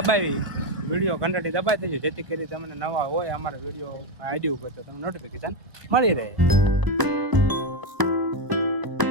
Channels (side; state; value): left; late; 1.0 ms